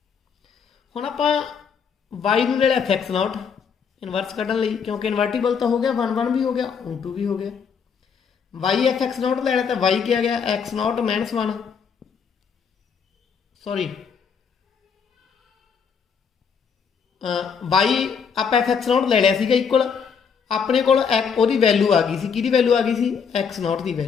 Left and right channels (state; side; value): quieter; right; 6.5 dB